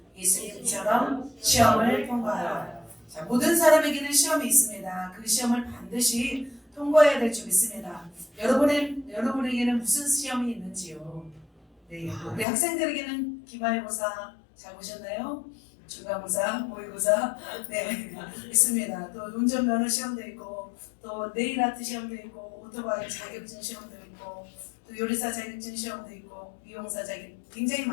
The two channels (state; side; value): drops out; right; at 12.5 s